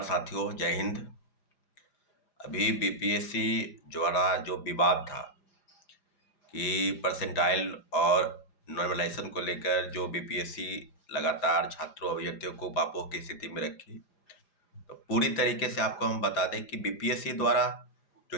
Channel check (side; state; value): right; late; 4.9 ms